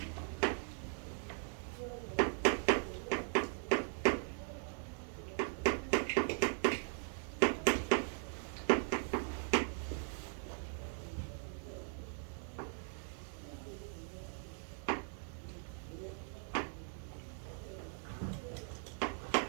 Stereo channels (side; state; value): left; silent; 51 dB below the other